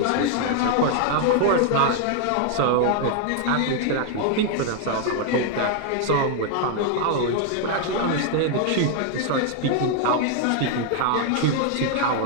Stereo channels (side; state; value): both; different; correlation 0.00